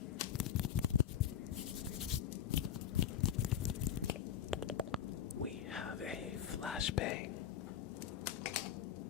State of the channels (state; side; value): quieter; right; 9.5 dB